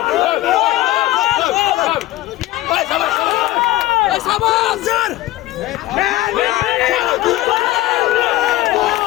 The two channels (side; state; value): right; quieter; 16.0 dB